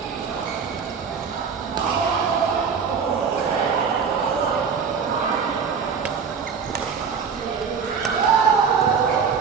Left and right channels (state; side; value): quieter; left; 6.2 dB